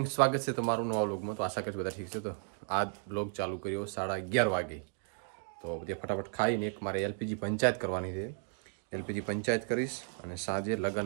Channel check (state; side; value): silent; left; 55 dB below the other